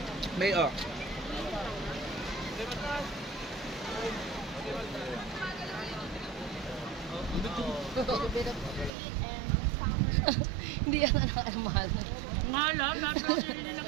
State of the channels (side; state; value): left; drops out; at 8.9 s